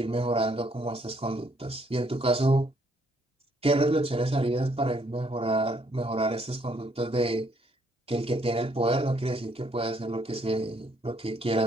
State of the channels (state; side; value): normal; both; correlation 0.69